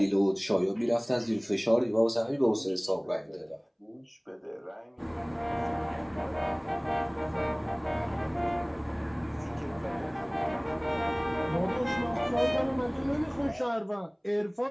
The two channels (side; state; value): both; identical; correlation 1.00